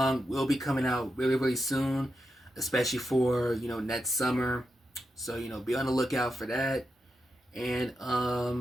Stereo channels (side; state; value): both; normal; correlation 0.87